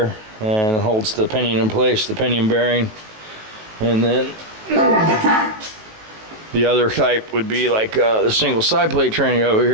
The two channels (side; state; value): left; late; 19 ms